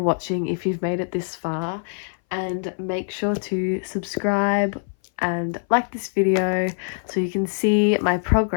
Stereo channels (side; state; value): right; silent; 60 dB below the other